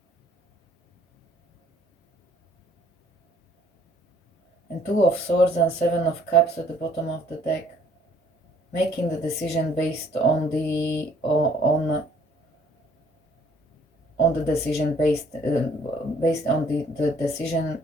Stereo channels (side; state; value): both; normal; correlation 0.61